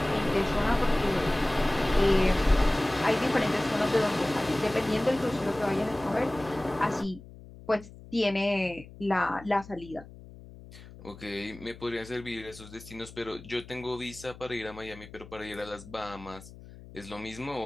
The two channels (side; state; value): left; noise; hum, 18 dB below the sound